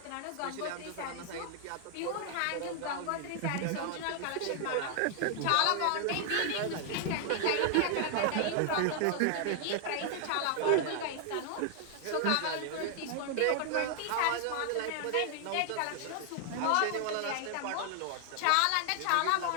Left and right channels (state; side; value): different; both; correlation 0.00